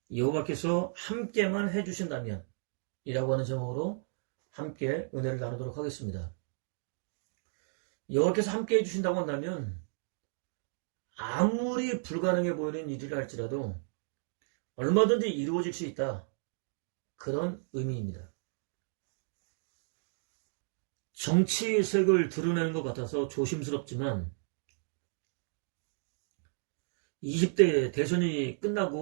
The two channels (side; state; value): left; silent; digital silence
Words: 이라고 하는 제목으로 함께 은혜를 나누도록 하겠습니다. 여호와께서 함께 해주신다고 한다면 아무리 불가능해 보이는 일이라 할지라도 얼마든지 이루어질 수 있다, 그런 의미입니다. 정치색을 드러내는 것 같아서 조심스럽지만 20대 대선이